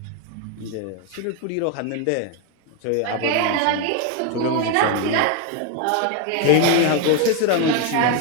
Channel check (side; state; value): both; different; correlation 0.01